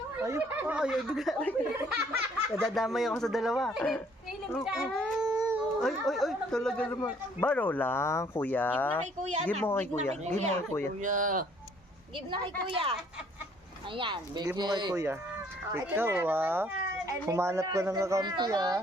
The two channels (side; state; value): both; normal; correlation 0.61